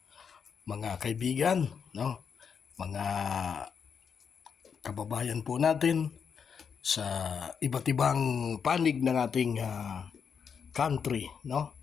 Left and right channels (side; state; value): right; quieter; 6.7 dB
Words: mga kaibigan, no? Mga kababayan po natin sa iba't ibang panig ng ating country, no?